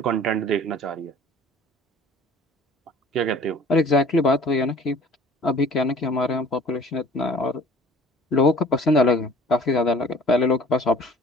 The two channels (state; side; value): normal; both; correlation 0.49